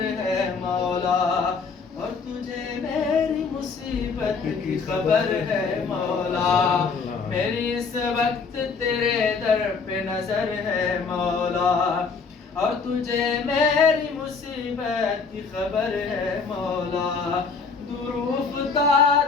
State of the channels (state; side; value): quieter; right; 5.0 dB